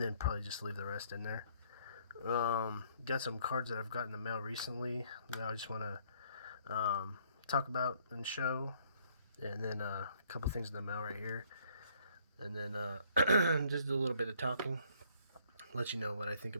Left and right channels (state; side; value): inverted; both; correlation -0.63